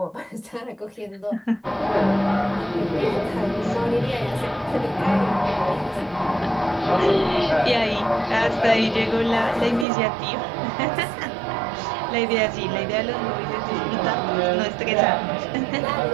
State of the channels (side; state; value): left; drops out; at 9.9 s